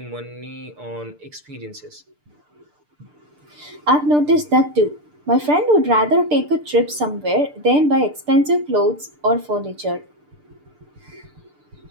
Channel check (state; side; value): late; left; 6.8 ms